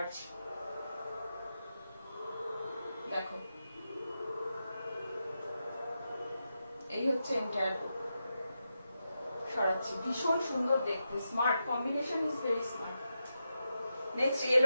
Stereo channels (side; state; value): both; inverted; correlation -0.88